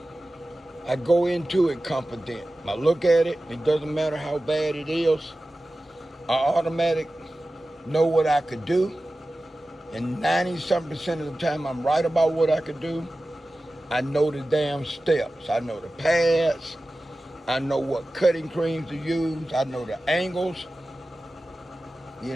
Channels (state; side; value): normal; both; correlation 0.95